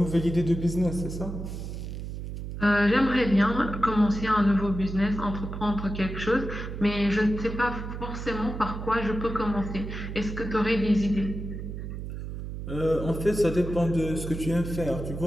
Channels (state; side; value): noise; right; hum, 7 dB below the sound